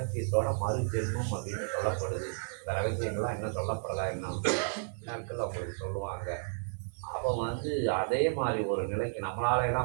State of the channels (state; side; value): silent; left; 56 dB below the other